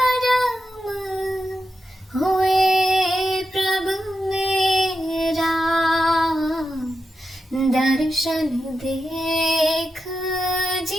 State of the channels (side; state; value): both; normal; correlation 0.89